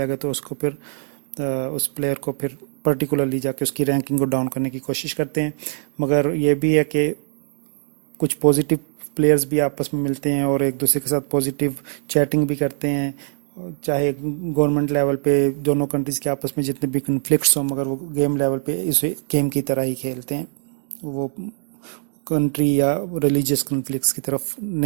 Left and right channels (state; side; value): silent; left; 64 dB below the other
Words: ہے تو اس کو پھر اس پلیئر کو پھر پرٹیکولرلی جا کے اس کی رینکنگ کو ڈاؤن کرنے کی کوشش کرتے ہیں۔ مگر یہ بھی ہے کہ کچھ پازیٹیو پلیئرز بھی آپس میں ملتے ہیں اور ایک دوسرے کے ساتھ پازیٹیو چیٹنگ بھی کرتے ہیں، چاہے گورنمنٹ لیول پہ دونوں کنٹریز کے آپس میں جتنے بھی کنفلکٹس ہوں، مگر وہ گیم لیول پہ اسے گیم کی طرح ہی کھیلتے ہیں، وہ کنٹری یا ریلیجیس کنفلکٹس کی طرف